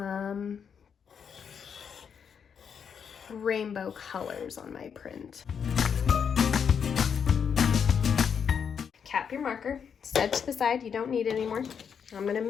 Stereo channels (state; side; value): quieter; right; 7.1 dB